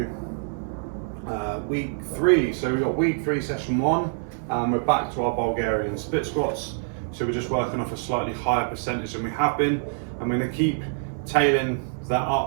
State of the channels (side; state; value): left; silent; digital silence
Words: week 3. So we've got week 3, session 1. We're back to our Bulgarian split squats. So we're just working off a slightly higher percentage than we have been. I'm going to keep tailing that